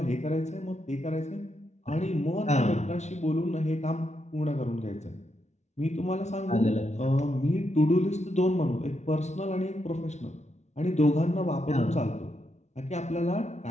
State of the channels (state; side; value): late; right; 0.32 ms